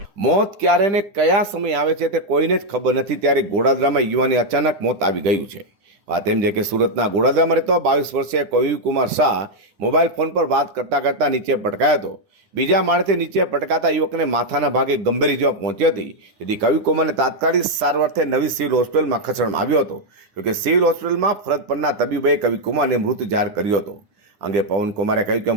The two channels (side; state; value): left; late; 10 ms